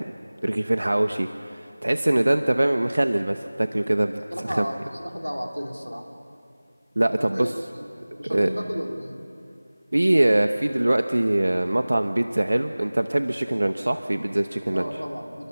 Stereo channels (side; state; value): both; inverted; correlation -1.00